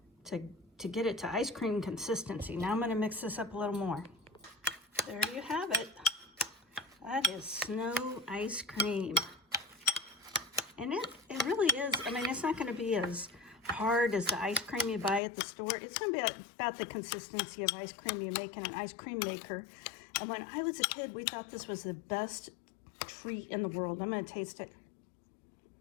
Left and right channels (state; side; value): drops out; right; at 15.2 s